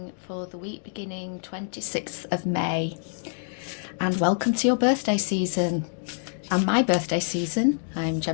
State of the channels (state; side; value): silent; right; digital silence